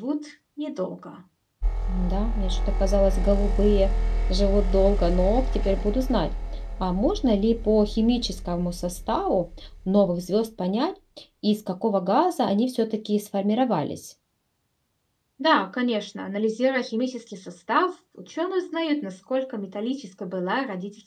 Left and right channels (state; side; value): identical; both; correlation 1.00